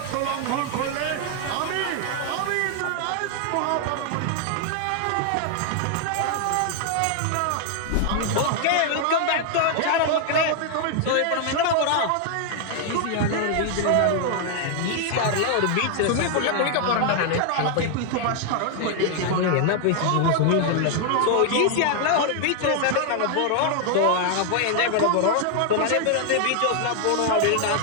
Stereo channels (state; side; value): different; both; correlation 0.00